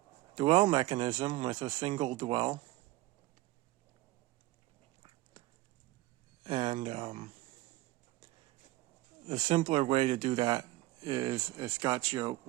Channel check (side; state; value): left; quieter; 18.1 dB